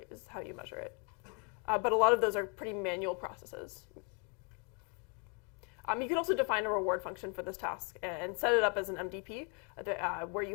is how you measure it. But a lot of those are pretty manual processes. You can also define a reward function for this task and set it up as an MDP where you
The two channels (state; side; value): quieter; right; 34.9 dB